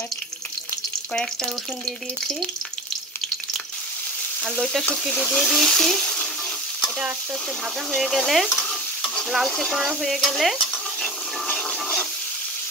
কয়েকটা রসুন দিয়ে দিয়েছি আর লইট্টা শুটকিটি দিয়ে দিয়েছি। এটা আস্তে আস্তে ভাজা হয়ে গেলে, লালচে করা হয়ে গেলে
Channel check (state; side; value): normal; both; correlation 0.32